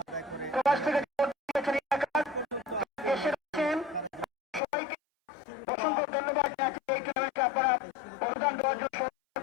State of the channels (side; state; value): right; drops out; at 4.6 s